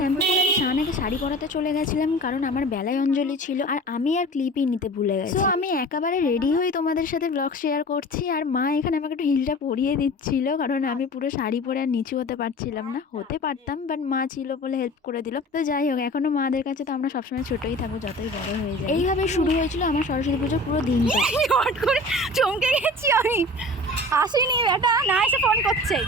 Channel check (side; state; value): both; normal; correlation 0.40